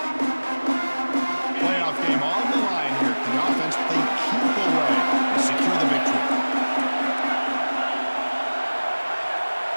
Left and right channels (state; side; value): inverted; both; correlation -1.00